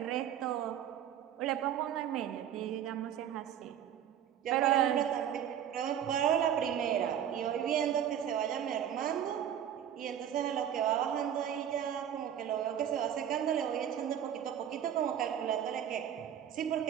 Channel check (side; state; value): left; quieter; 9.8 dB